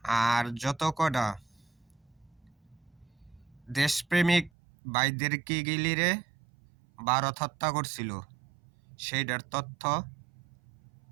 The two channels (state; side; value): drops out; left; at 4.5 s